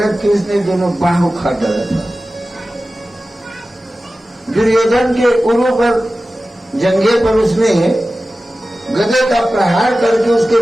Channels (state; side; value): normal; both; correlation 0.95